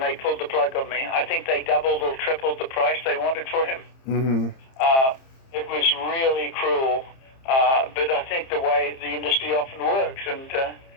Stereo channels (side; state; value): right; late; 30 ms